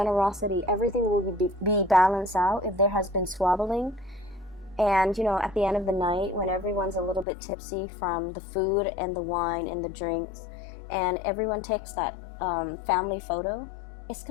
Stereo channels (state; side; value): drops out; right; at 7.2 s